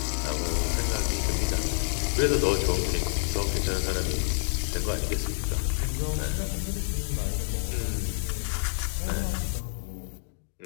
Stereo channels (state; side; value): silent; right; 59 dB below the other